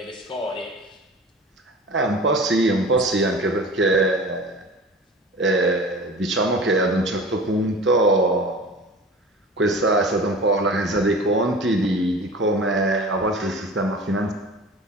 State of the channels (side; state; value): both; normal; correlation 0.39